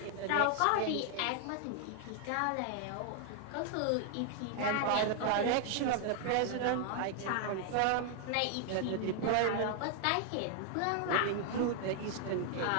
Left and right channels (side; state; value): both; different; correlation 0.00